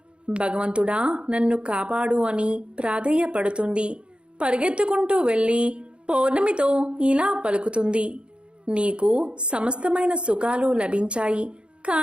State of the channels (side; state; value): left; late; 0.056 ms